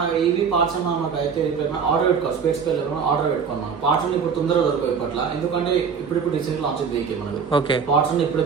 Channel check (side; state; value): left; quieter; 6.3 dB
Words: ఈవీ పార్ట్స్ మనకు అయితే ఆర్డర్ పెట్టుకోవాలి. స్పేస్ ఆర్డర్ పెట్టుకున్నాం. పార్ట్స్ అన్ని ఇప్పుడు తొందరగా దొరకవు ఇప్పట్లో, ఎందుకంటే ఇప్పుడు రీసెంట్ లాంచ్ వెహికల్ మనకు. ఓకే. పార్ట్స్ అన్ని ఇప్పుడే